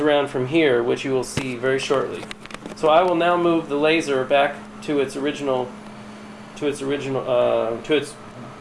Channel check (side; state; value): both; identical; correlation 1.00